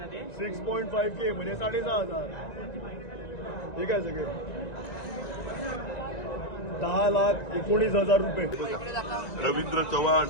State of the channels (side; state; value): right; late; 1.9 ms